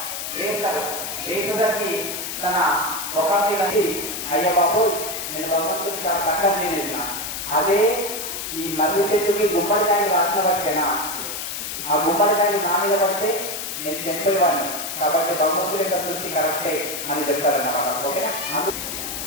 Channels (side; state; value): left; noise; hiss, 5 dB below the sound